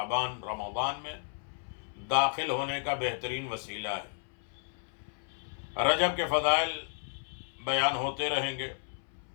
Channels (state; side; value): silent; right; 56 dB below the other